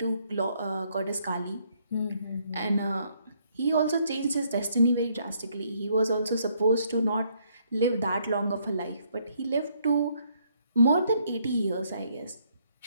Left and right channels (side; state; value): both; inverted; correlation -0.70